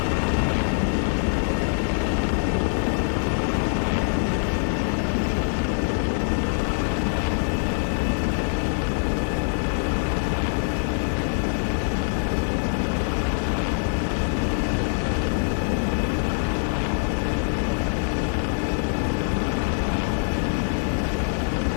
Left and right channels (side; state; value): right; silent; 63 dB below the other